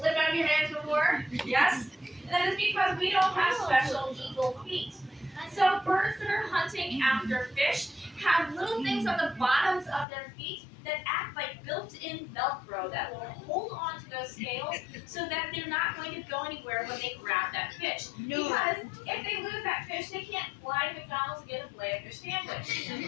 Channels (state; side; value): drops out; right; at 10.1 s